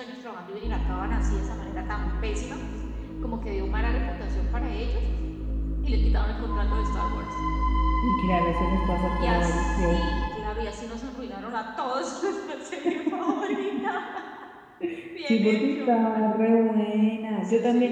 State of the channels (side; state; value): both; identical; correlation 1.00